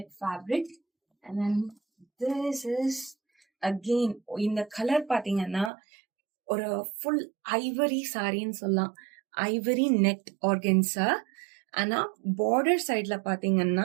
fabric. and then this is again இந்த கலர் பாத்தீங்கன்னா ஒரு ஃபுல் ஐவரி சாரின்னு சொல்லலாம், ஐவரி நெட் ஆர்கன்ஸா. ஆனா பார்டர் சைட்ல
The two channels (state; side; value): drops out; left; at 5.7 s